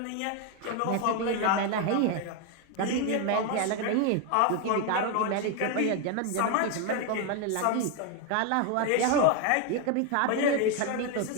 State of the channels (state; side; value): different; both; correlation 0.01